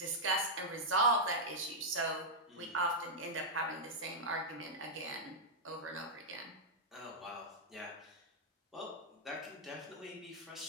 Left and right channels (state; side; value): normal; both; correlation -0.06